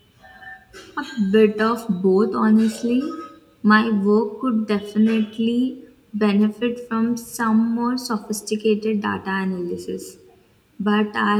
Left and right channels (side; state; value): both; identical; correlation 1.00